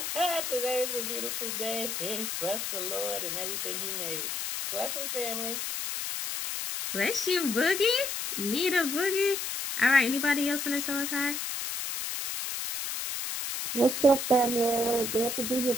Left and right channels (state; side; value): noise; left; hiss, 3 dB below the sound